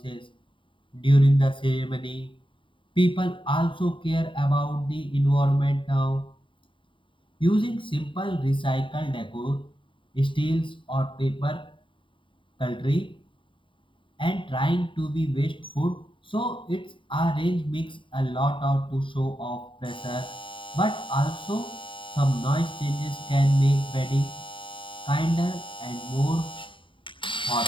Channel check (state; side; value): late; right; 0.25 ms